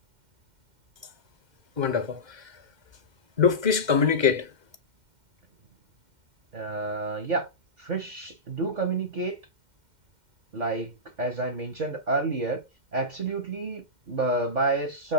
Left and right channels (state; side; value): late; left; 2.1 ms